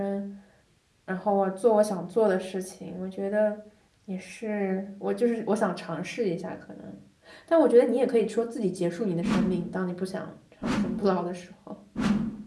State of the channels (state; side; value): identical; both; correlation 1.00